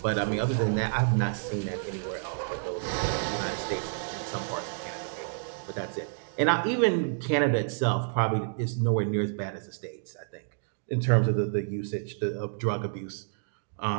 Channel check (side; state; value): left; silent; digital silence